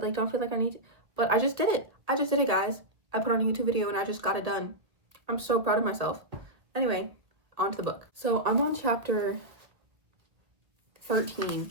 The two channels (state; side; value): late; left; 1.5 ms